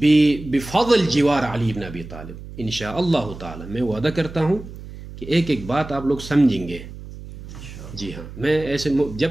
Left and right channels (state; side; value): noise; right; hum, 14 dB below the sound